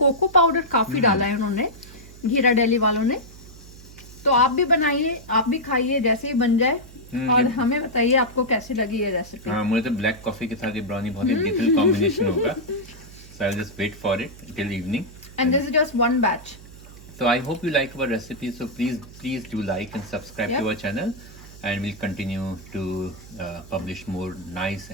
पाउडर काफी डाला है उन्होंने, घिराडेली वालों ने. तो आप भी बनाइए, आप भी खाइए, जैसे ही बन जाए और हमें बताइए आपको कैसी लगी ये रेसिपी. हाँ, मुझे तो ब्लैक कॉफी के साथ ये ब्राउनी बहुत ही डिफरेंट कॉम्बिनेशन होगा. So I'll just wait for it till evening. And this is just one batch. So I hope you like our recipe. So please do like and subscribe to our channel, and we'll continue to publish more nice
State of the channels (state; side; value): noise; right; hum, 19 dB below the sound